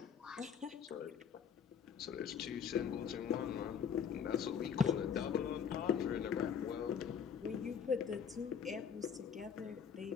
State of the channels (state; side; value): quieter; right; 7.4 dB